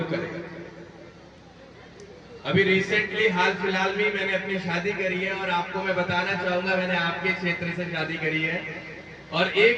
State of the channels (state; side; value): identical; both; correlation 1.00